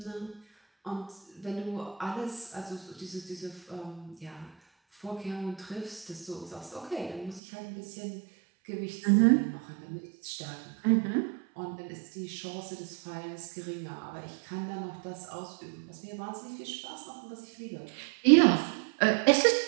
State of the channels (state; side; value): drops out; left; at 7.4 s